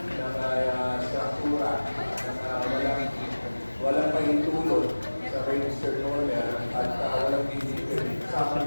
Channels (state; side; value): inverted; both; correlation -1.00